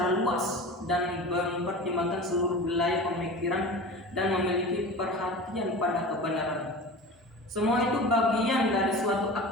luas dan mempertimbangkan seluruh wilayah pemikiran, dan memiliki perhatian pada kebenaran. Semua itu bagian dari suatu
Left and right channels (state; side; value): normal; both; correlation 0.34